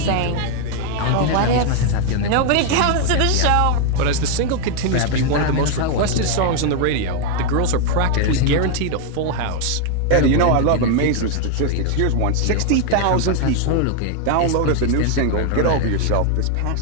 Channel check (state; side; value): different; both; correlation 0.00